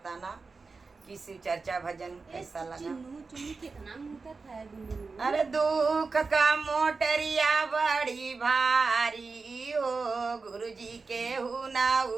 कि शिव चर्चा भजन कैसा लगा। अरे दुख का मोटरिया बड़ी भारी हो, गुरुजी के हुना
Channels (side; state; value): left; quieter; 4.3 dB